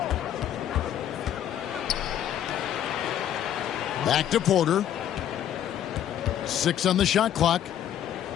Back to Porter. 6 on the shot clock.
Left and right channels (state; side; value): quieter; right; 10.6 dB